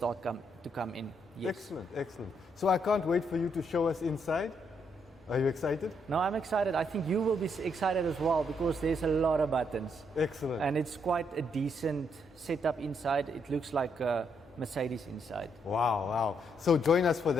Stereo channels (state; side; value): normal; both; correlation 0.76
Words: to come in. Yes. Excellent, excellent. So I can't wait for you to show us inside. Are you excited? No, I'm excited. I think you will be excited as well because there's a lot of buttons. Excellent. And it's quite a decent setup inside. It looks like a Mercedes inside. Wow, wow. So join us for